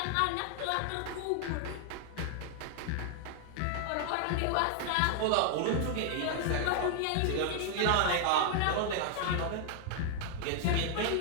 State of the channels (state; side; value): different; both; correlation 0.00